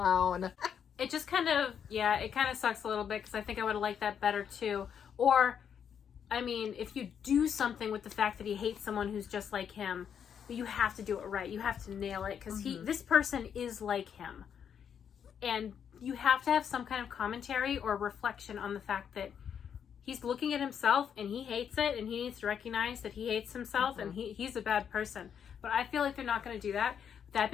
It just kind of sucks a little bit because I think I would have liked that better too. Or, I mean, if you do something with the fact that he hates someone who's just like him, but you have to do it right. You have to nail it because this person is like him. And you have to have some kind of commentary or reflection on the fact that he's looking at himself and he hates it and he needs to recognize that he hates himself and he's a bad person. But I feel like they're not going to do that. That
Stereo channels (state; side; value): quieter; right; 8.0 dB